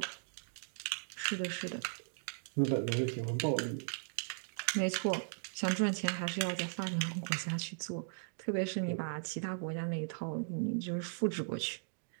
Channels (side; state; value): left; silent; digital silence